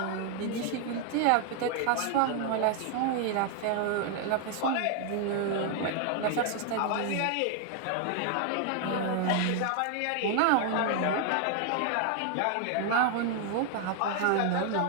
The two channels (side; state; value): both; different; correlation 0.00